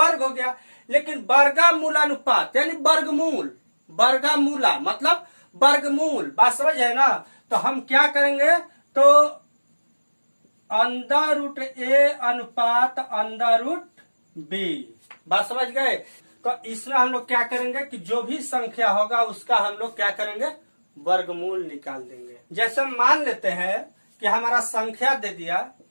हो गया, लेकिन वर्गमूलानुपात यानी वर्गमूल, वर्गमूला मतलब वर्गमूल, बात समझ है ना। तो हम क्या करेंगे, तो अंडर रूट ए अनुपात अंडर रूट बी, बात समझ गए। तो इसमें हम लोग क्या करेंगे कि जो भी संख्या होगा उसका हम लोग क्या करेंगे, वर्गमूल निकाल देंगे। जैसे मान लेते हैं कि हमारा संख्या दे दिया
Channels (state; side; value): inverted; both; correlation -1.00